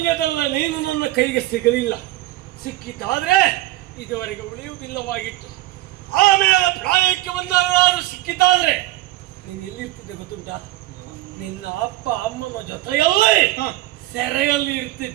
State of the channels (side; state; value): left; quieter; 17.0 dB